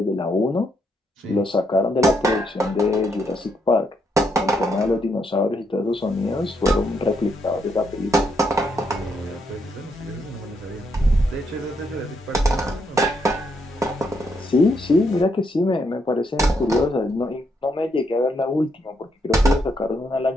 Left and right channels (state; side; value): normal; both; correlation 0.77